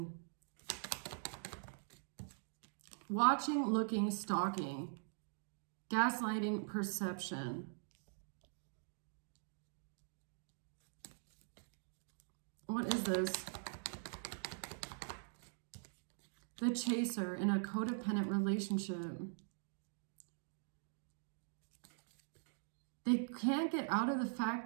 Watching, looking, stalking. Gaslighting, perception. What is this? The Chaser in a codependent relationship. They can't get out of the fact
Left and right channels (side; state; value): left; silent; digital silence